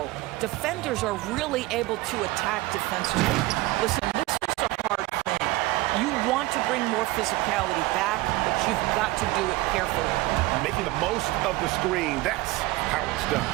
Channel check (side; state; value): left; quieter; 19.4 dB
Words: defenders are really able to attack defensively. Listen, this is a hard thing. You want to bring more physicality back, but you've got to do it carefully. Making the most of the screen, that's how it's done.